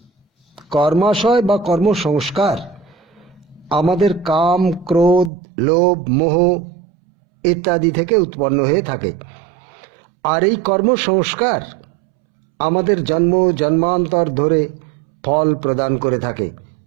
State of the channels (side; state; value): left; drops out; at 5.3 s